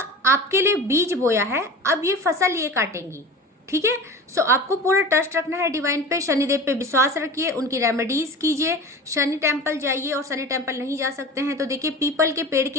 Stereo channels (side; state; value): both; normal; correlation 0.34